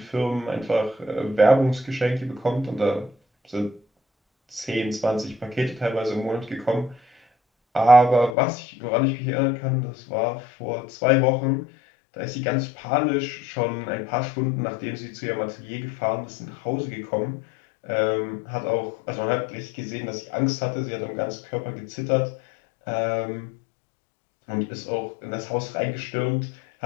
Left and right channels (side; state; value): right; drops out; at 8.3 s